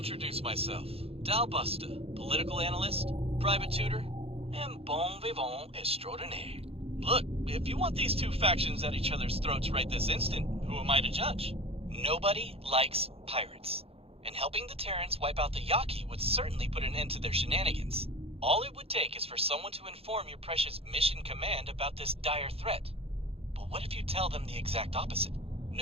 myself. Dal Busta, political analyst, private tutor, and bon vivant extraordinaire. Look, if you want these two factions at each other's throats right this instant, who am I to judge? Nobody likes pirates, and helping the Terrans wipe out the Yaki would certainly put an end to their shenanigans. All it would take is for someone to inform your precious Mission Command about this dire threat. But what if you tell them the exact opposite?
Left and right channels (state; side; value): late; left; 0.28 ms